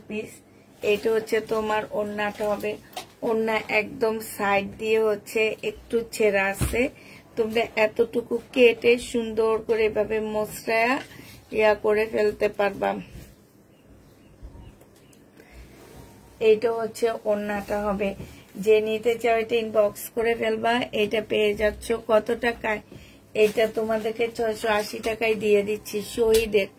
পিস। এটা তোমার ওড়নাটা হবে। ওড়না একদম সাইড দিয়ে একটু ছেঁড়া আছে। তোমরা এতটুকু কেটে সুন্দর করে এভাবে মসৃয়া ইয়া করে ফেলতে পারবা। এইটা ওড়নাটা হবে। যে নিতে চাও এটা ইনবক্স করে ফেলবা। এটা পেয়ে যাচ্ছ কত টাকায়? এটা তোমাদেরকে 680 টাকায় দিয়ে দিচ্ছি। শহীদের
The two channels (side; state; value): both; identical; correlation 1.00